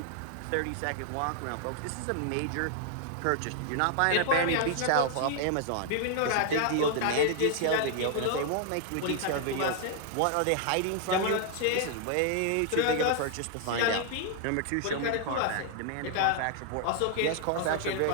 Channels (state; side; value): different; both; correlation 0.00